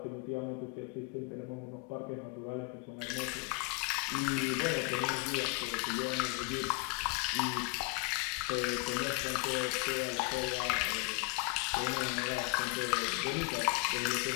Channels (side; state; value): right; quieter; 24.8 dB